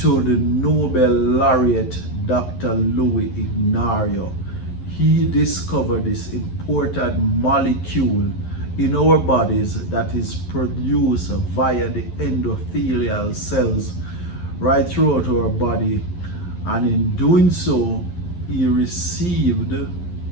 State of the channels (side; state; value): right; late; 11 ms